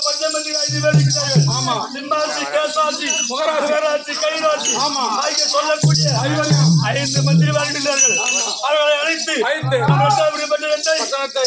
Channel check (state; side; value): identical; both; correlation 1.00